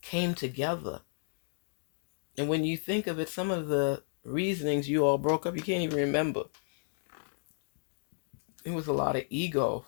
came together. And when you think of it, some of the reasonings you all broke up, you can't even remember. It was a lot of ego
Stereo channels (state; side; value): silent; right; 56 dB below the other